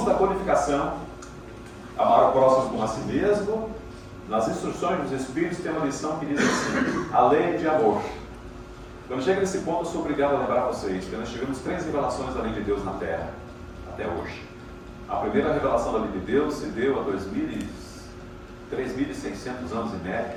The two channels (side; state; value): both; identical; correlation 1.00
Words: da Codificação, amar o próximo como a si mesmo, nas instruções dos Espíritos tem uma lição que diz assim: a lei de amor. Quando chega nesse ponto, eu sou obrigado a lembrar vocês que nós tivemos 3 revelações da lei de Deus na Terra, até hoje. A primeira revelação da lei de Deus se deu há 3.600 anos e médio,